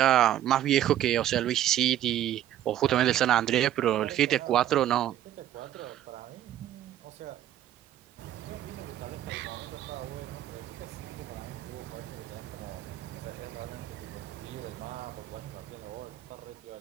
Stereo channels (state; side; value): quieter; left; 12.1 dB